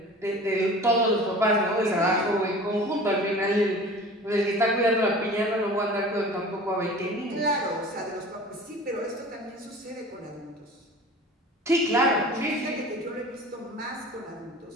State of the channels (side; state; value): both; normal; correlation 0.41